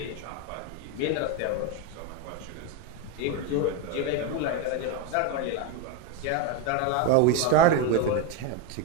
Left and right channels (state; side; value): different; both; correlation 0.03